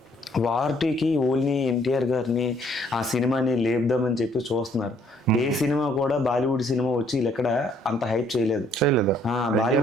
వార్టీకి ఓన్లీ ఎన్టీఆర్ గారిని ఆ సినిమాని లేపుదామని చెప్పి చూస్తున్నారు. ఏ సినిమా కూడా బాలీవుడ్ సినిమా వచ్చి ఎక్కడ అంత హైప్ చేయలేదు.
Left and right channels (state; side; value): normal; both; correlation 0.64